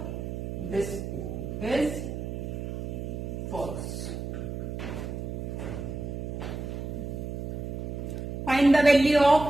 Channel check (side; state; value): right; noise; hum, 5 dB below the sound